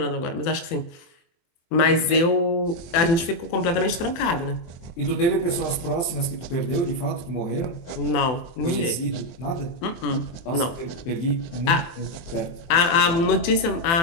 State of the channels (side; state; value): right; late; 24 ms